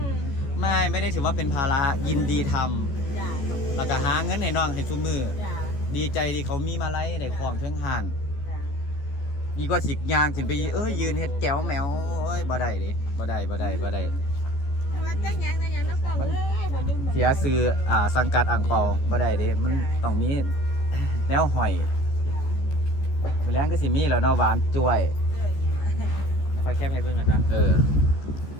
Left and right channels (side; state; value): right; late; 14 ms